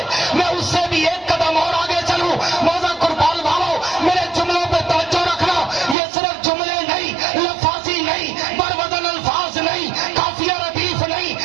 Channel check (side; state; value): left; drops out; at 6.0 s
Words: میں اس سے بھی ایک قدم اور آگے چلوں. موزہ قربان والو میرے جملوں پہ توجہ رکھنا. یہ صرف جملے نہیں، لفاظی نہیں، بروزن الفاظ نہیں، قافیہ ردیف نہیں،